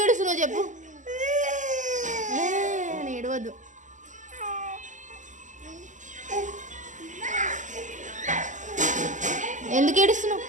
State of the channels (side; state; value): left; late; 0.36 ms